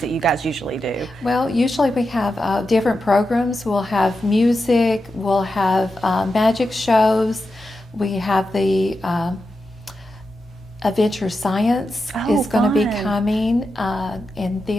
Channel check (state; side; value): normal; both; correlation 0.89